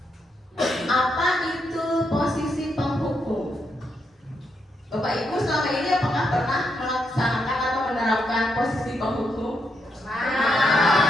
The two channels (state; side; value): normal; both; correlation 0.80